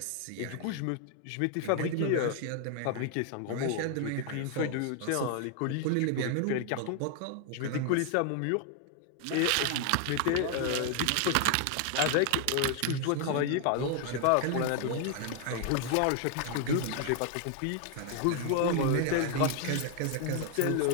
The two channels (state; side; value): different; both; correlation 0.00